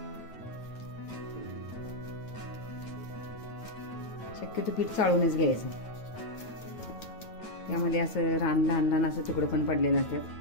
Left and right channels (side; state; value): right; late; 9.1 ms